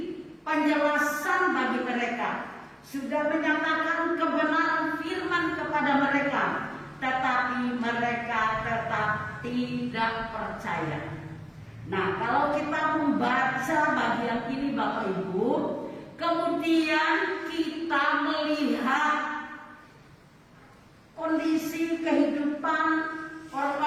penjelasan bagi mereka, sudah menyatakan kebenaran firman kepada mereka, tetapi mereka tetap tidak percaya. Nah, kalau kita membaca bagian ini Bapak Ibu, kemudian kita melihat kondisi kehidupan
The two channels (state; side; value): identical; both; correlation 1.00